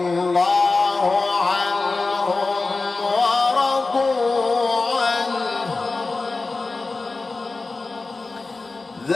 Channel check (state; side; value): quieter; right; 3.6 dB